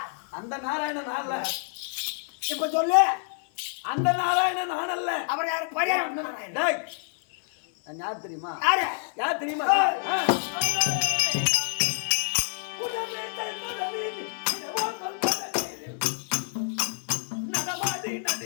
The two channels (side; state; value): right; silent; 60 dB below the other